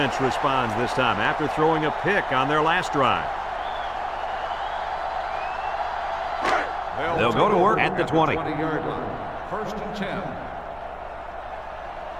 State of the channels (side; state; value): both; identical; correlation 1.00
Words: responds this time after throwing a pick on their last drive. They'll go to work at the 20. 20-yard line. First and 10.